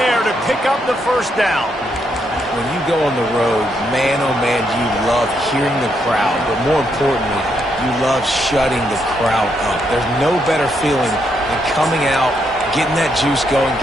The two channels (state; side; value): normal; both; correlation 0.77